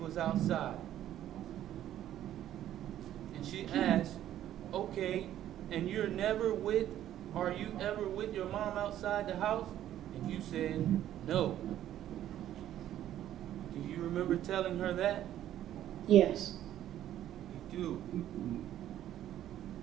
outside. And she asked, okay, and are you ever with your mom outside the house? And you said, no. Do you remember telling her that? Yes. You do.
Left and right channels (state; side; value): quieter; left; 12.0 dB